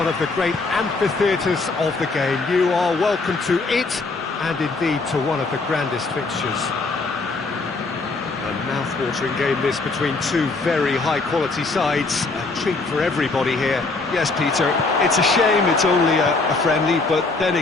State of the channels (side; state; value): right; quieter; 3.7 dB